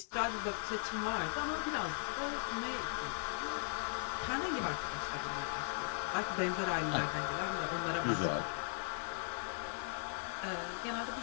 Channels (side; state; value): right; silent; digital silence